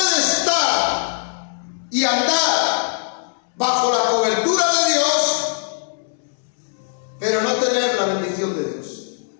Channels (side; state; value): right; silent; 65 dB below the other